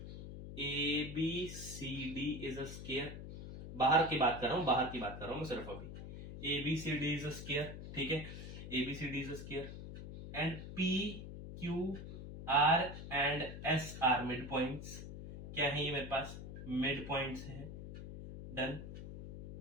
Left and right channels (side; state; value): left; noise; hum, 10 dB below the sound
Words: ABCD इज अ स्क्वायर, बाहर की बात कर रहा हूं, बाहर की बात कर रहा हूं मैं सिर्फ अभी। ABCD इज अ स्क्वायर, ठीक है, ABCD is a square, and PQR and S are mid points. क्या है ये मेरे पास? मिड पॉइंट्स है, डन।